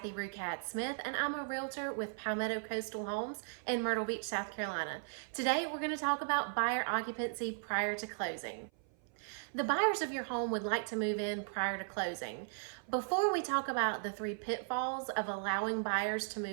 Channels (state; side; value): silent; left; 53 dB below the other